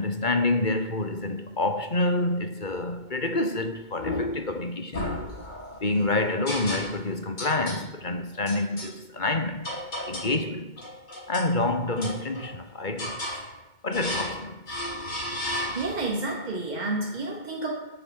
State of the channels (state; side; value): late; right; 2.2 ms